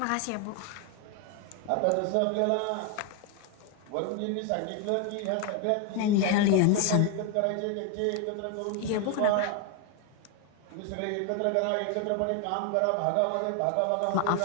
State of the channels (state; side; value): different; both; correlation 0.01